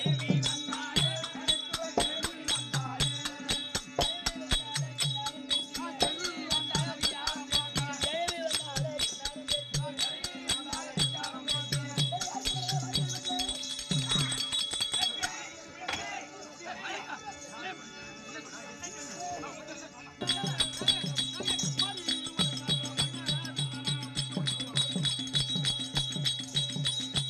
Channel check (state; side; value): identical; both; correlation 1.00